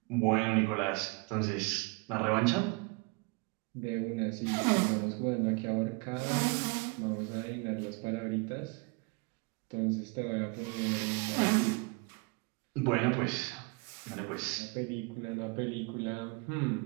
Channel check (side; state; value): left; quieter; 30.1 dB